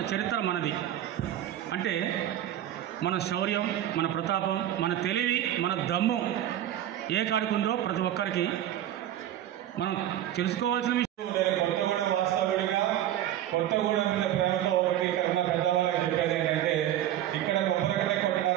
చరిత్ర మనది. అంటే మన శౌర్యం, మన ప్రతాపం, మన తెలివి, మన దమ్ము ఏ కాడికుందో ప్రతి ఒక్కరికి మనం తెలుసుకోవాల్సిన విషయం. కొత్తగూడెం వాస్తవుడిగా కొత్తగూడెం మీద ప్రేమతో ఇక్కడ ఉన్న పెద్దవాళ్ళకి చెప్పేది ఏంటంటే, ఇక్కడ కొబ్బరికట్ట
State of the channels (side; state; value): left; quieter; 12.0 dB